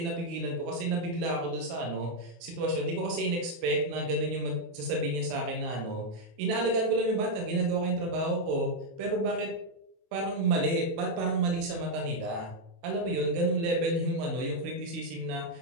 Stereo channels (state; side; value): late; left; 23 ms